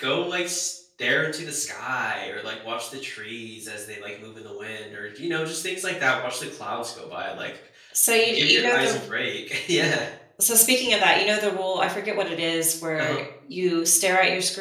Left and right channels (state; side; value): identical; both; correlation 1.00